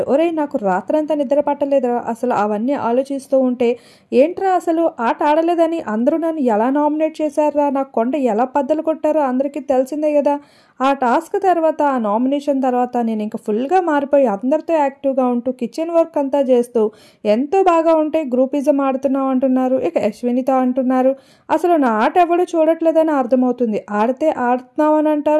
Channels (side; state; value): both; identical; correlation 1.00